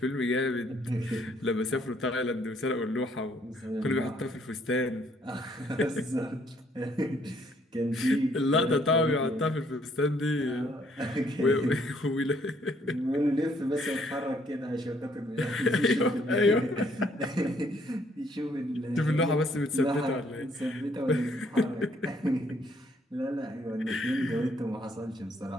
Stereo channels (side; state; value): both; normal; correlation 0.66